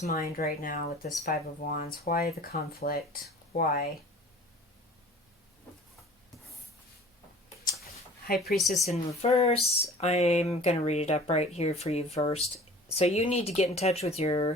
mind right now with this Five of Wands? Why the conflict? Why? High Priestess in reverse. I'm going to read it up right here for you first. So you need to get in touch with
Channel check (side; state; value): both; normal; correlation 0.45